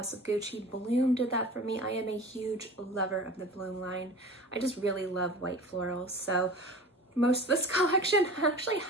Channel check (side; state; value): both; normal; correlation 0.39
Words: of Gucci. Bloom did that for me. I am a huge lover of the Bloom line. I just really love white florals. So most of this collection, actually